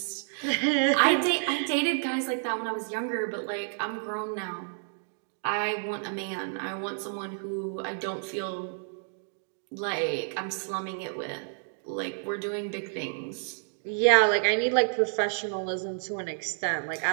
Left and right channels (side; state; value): left; silent; digital silence